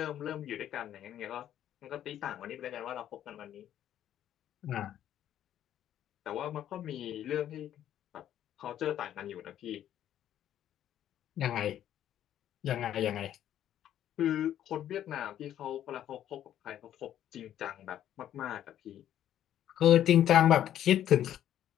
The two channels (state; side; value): quieter; right; 11.2 dB